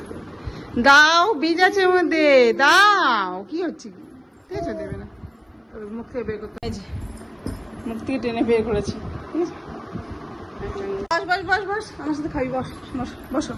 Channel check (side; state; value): both; identical; correlation 1.00